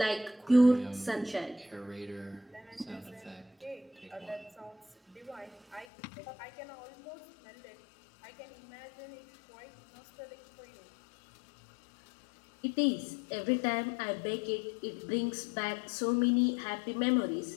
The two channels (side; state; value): right; drops out; at 5.9 s